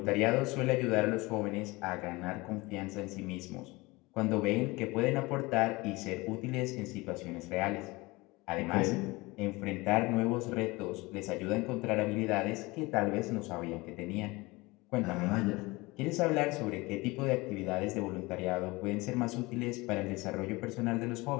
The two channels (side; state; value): right; quieter; 22.9 dB